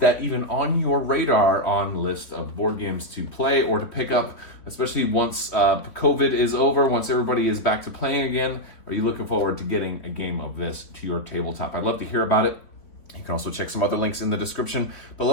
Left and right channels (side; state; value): right; late; 3.7 ms